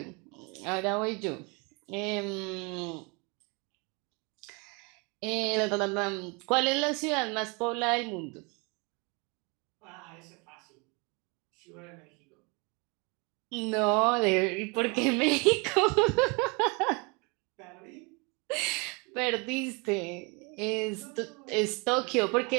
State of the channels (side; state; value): left; quieter; 30.6 dB